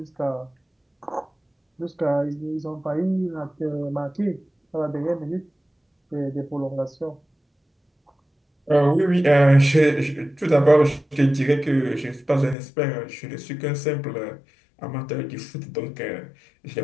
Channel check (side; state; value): right; drops out; at 12.6 s